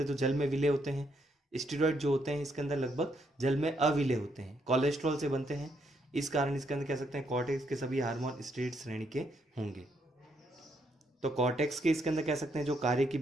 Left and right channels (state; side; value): normal; both; correlation 0.75